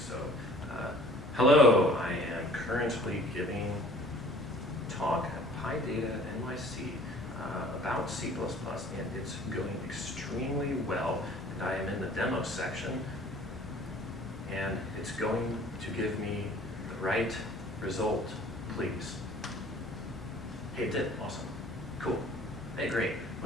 hello, I am currently giving talk at PyData NYC about C++, and it's going extremely well. And I am in the demo section, and it's going to give me the right result, please. Hey, it did. Awesome. Cool. Hey, great.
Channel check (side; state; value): both; normal; correlation 0.51